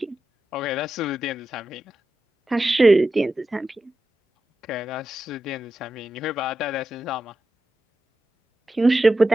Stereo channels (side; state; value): both; normal; correlation 0.91